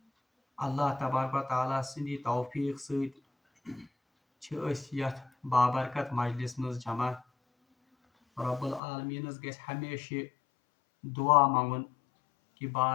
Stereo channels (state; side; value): drops out; right; at 8.8 s